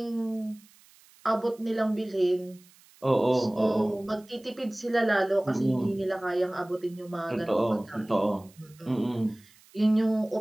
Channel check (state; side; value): noise; right; hiss, 27 dB below the sound